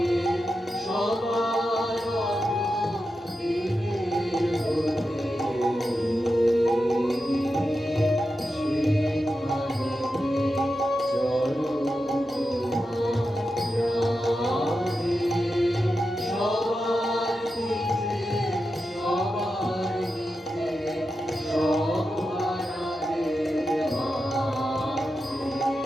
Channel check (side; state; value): both; normal; correlation 0.89